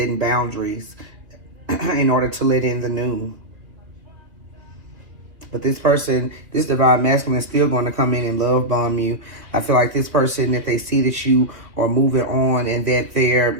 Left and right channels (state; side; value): late; left; 2.5 ms